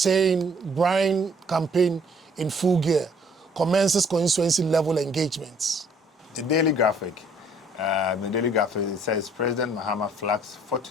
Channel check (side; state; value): both; normal; correlation 0.60